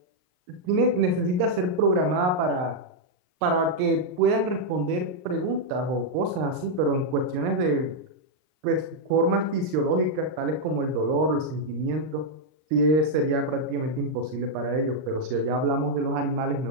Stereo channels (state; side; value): late; left; 39 ms